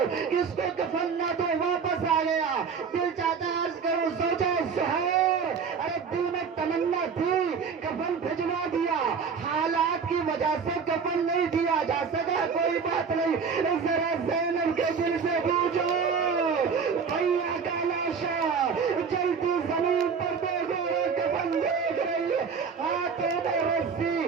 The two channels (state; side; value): quieter; left; 5.9 dB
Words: کس کو کفن نہ دو، واپس آ گیا۔ دل چاہتا ہے عرض کروں زوجہ زہیر، ارے دل میں تمنا تھی، کفن بھجوا دیا، حالات کی وجہ سے کفن نہیں دیا جا سکا، کوئی بات نہیں، ذرا زینب کے دل سے پوچھو، بھیا کا لاشا جلتی زمین پر دیکھو، کفن دیکھ رہی ہے، ہاتھوں میں رسی،